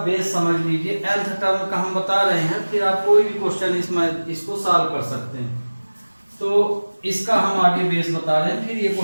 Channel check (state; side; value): inverted; both; correlation -1.00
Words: बेस समझ लीजिए, nth टर्म का हम बता रहे हैं, फिर आप कोई भी क्वेश्चन इसमें इसको सॉल्व कर सकते हैं। तो इसका हम आगे बेस बता रहे हैं, फिर ये